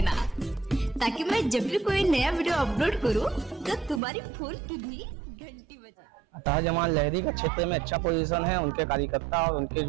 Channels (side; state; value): left; drops out; at 4.0 s